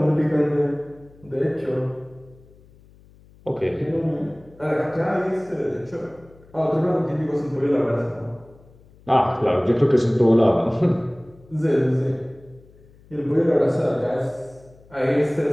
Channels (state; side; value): noise; left; hum, 26 dB below the sound